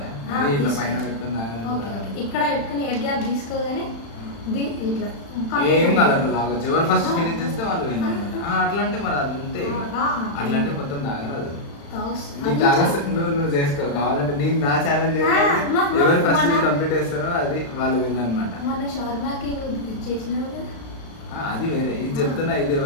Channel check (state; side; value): late; right; 35 ms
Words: ఇట్లా పైన పెట్టుకుని ఇక్కడ పెట్టుకుని ఎయిర్ గ్యాప్ తీసుకోగానే ఇట్లా ఏం కాదు, అట్లా తాగొచ్చు. ఎవరు ఫస్ట్ ఫినిష్ చేస్తే వాళ్ళు విన్ అనమాట. అట్లా అంటే మరి అది అంతే, అట్లా అంటే మొత్తం తాగరాదు. నీకు తాగొచ్చు, నువ్వు చేసుకో. కావాలంటే నేను నా ఛాలెంజ్ ఎవరు ఫస్ట్ కంప్లీట్ చేస్తారో అది వాళ్ళు విన్ అనమాట. అది వేరే, ఇది చెప్తున్నా. ఇది